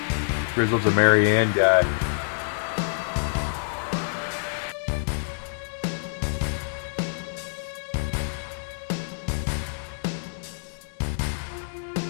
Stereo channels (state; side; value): silent; right; digital silence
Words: Grizzle's a Marianne guy.